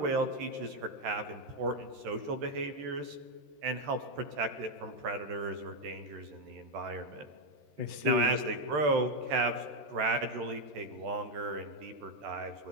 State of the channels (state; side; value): late; left; 13 ms